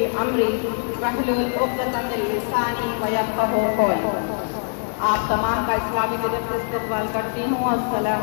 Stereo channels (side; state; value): right; silent; digital silence